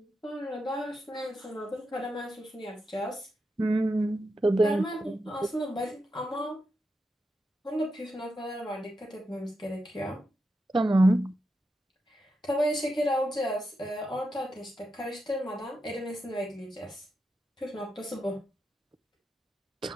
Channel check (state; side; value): normal; both; correlation 0.87